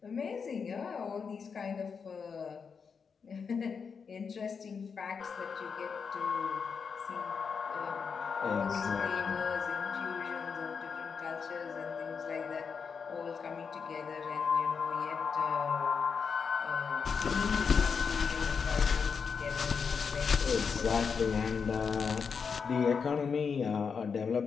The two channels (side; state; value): right; quieter; 5.9 dB